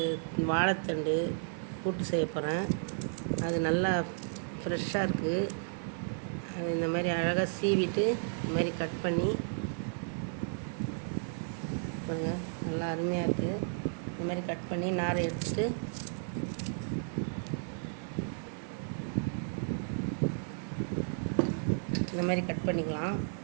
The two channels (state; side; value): silent; left; 56 dB below the other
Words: வாழைத்தண்டு கூட்டு செய்ய போகிறேன். அது நல்லா ஃப்ரெஷ்ஷாக இருக்குது. அது இந்த மாதிரி அழகாக சீவிட்டு இந்த மாதிரி கட் பண்ணி பாருங்கள், நல்லா அருமையாக இருக்குது. இந்த மாதிரி கட் பண்ணி நாரை எடுத்துட்டு இந்த மாதிரி கட் பண்ணிக்கலாம்.